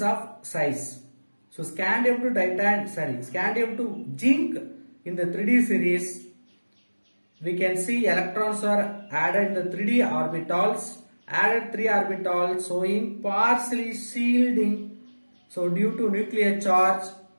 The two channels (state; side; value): inverted; both; correlation -1.00